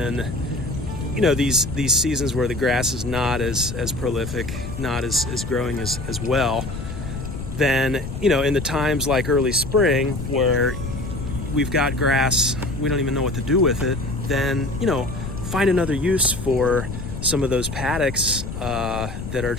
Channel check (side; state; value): left; noise; rumble, 7 dB below the sound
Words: these seasons where the grass is not as prolific, not as growing as well, then in the times like early spring where we've got grass, we don't even know what to do with it, then find another use for some of those paddocks that are